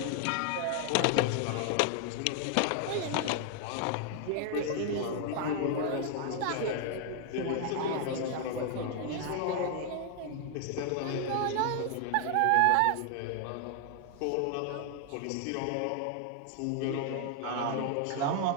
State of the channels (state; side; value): different; both; correlation 0.00